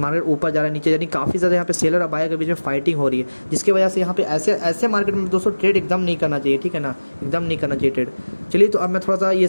मार्केट ऊपर जा रहा है, नीचे नीचे, यानी काफ़ी ज़्यादा यहाँ पे सेलर और बायर के बीच में फाइटिंग हो रही है, जिसकी वजह से यहाँ पे ऐसे मार्केट में दोस्तों ट्रेड एकदम नहीं करना चाहिए, ठीक है ना, एकदम नहीं करना चाहिए ट्रेड। चलिए तो अब मैं थोड़ा सा ये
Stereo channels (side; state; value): both; inverted; correlation -1.00